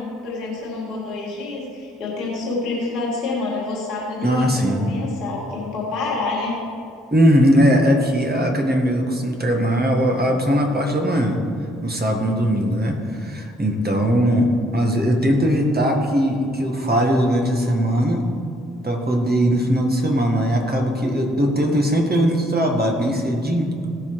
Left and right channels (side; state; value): both; normal; correlation 0.69